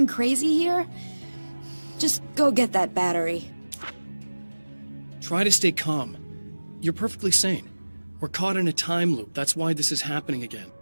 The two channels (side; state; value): both; inverted; correlation -1.00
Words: crazy here? Just go get that battery. Try to stay calm. You're perfectly sane. We're caught in a time loop. That's why this is happening again.